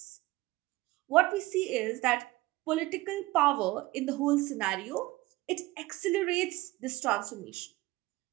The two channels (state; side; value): quieter; left; 19.5 dB